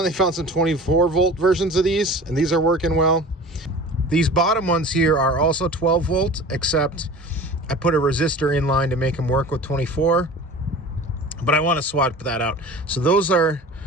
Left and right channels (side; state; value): both; normal; correlation 0.39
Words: found some 24-volt versions of these, and these are working well. These bottom ones here are also 12 volt, except I put a resistor in line to make them work with 24. But I want to swap that out. So those are